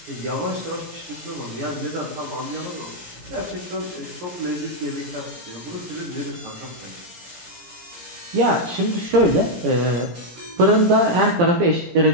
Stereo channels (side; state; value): left; late; 17 ms